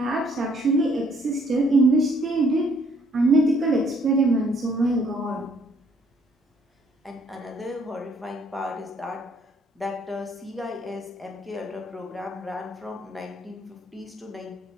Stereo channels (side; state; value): both; normal; correlation 0.65